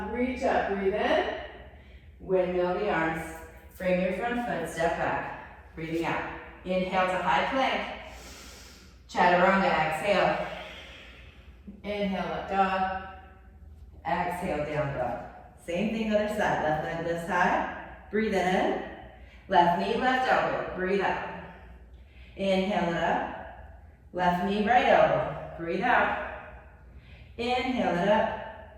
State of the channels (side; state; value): both; identical; correlation 1.00